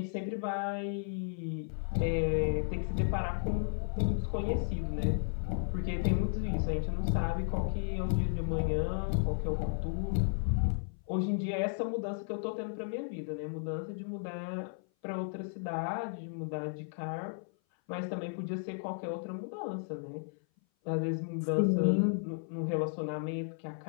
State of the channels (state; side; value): silent; right; 55 dB below the other